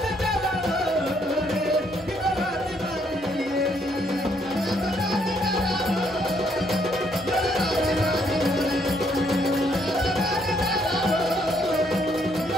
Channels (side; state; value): both; normal; correlation 0.70